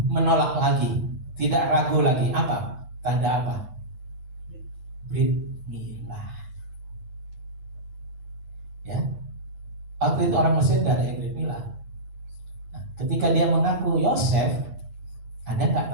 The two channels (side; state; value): left; late; 9.6 ms